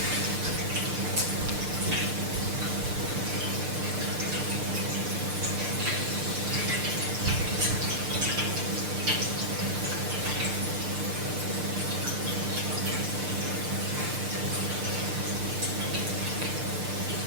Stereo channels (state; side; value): late; left; 6.6 ms